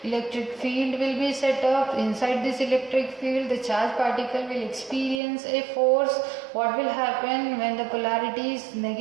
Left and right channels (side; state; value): left; drops out; at 5.2 s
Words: electric field will be set up. Inside this electric field, the charged particle will experience a force. What will happen when the polarity is